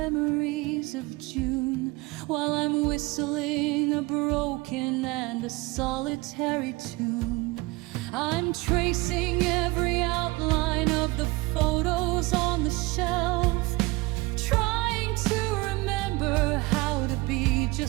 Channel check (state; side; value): quieter; left; 23.1 dB